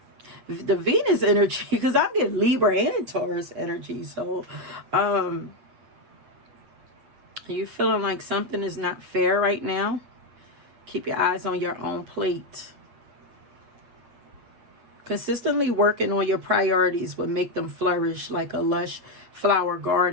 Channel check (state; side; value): late; left; 8.4 ms